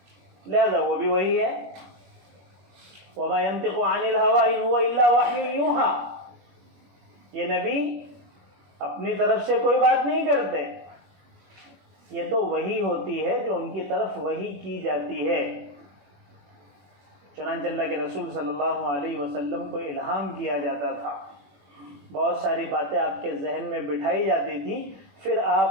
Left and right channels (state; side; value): late; left; 21 ms